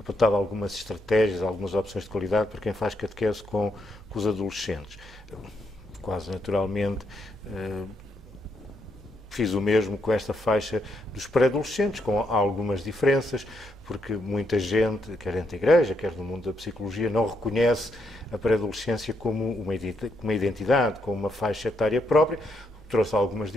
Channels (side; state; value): both; normal; correlation 0.77